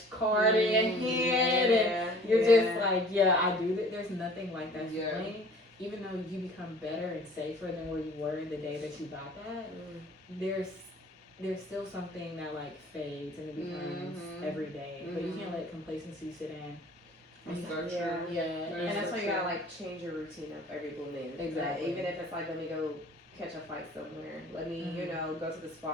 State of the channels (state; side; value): normal; both; correlation 0.50